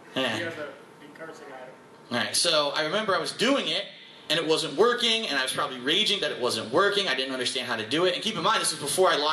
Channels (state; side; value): identical; both; correlation 1.00